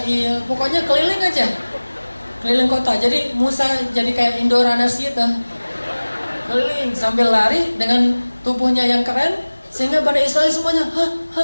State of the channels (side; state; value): both; inverted; correlation -1.00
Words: pokoknya keliling aja, keliling kota. Jadi Musa jadi kayak Indoranas gitu, keliling sambil lari dengan tubuhnya yang keren, sehingga Bani Israel semuanya,